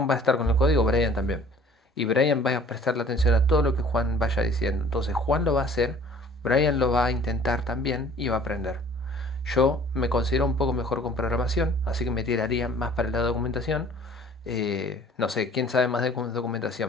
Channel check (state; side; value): normal; both; correlation 0.52